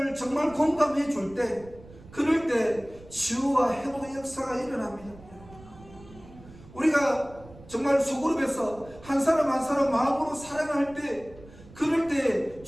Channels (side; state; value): right; noise; rumble, 20 dB below the sound